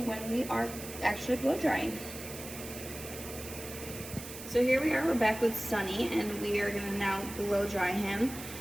when we are actually blow drying. So here we are, we're back with Sunny, and we are going to now blow dry him.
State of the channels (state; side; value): noise; right; hiss, 12 dB below the sound